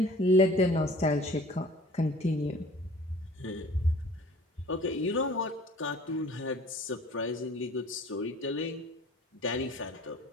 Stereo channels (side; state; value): both; normal; correlation 0.48